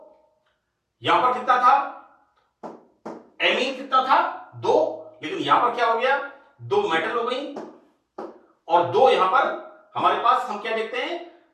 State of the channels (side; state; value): both; identical; correlation 1.00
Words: यहां पर कितना था, एमीन कितना था, 2, लेकिन यहां पर क्या हो गया, 2 मेटल हो गई और 2 यहां पर हमारे पास हम क्या देखते हैं,